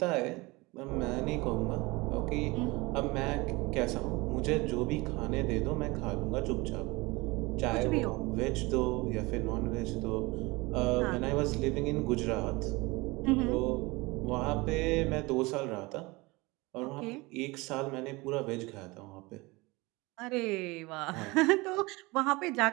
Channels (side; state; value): left; quieter; 23.4 dB